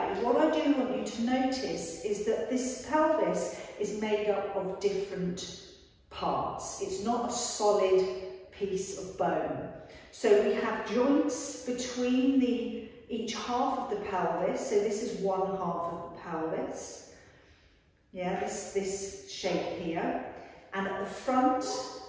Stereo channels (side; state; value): both; identical; correlation 1.00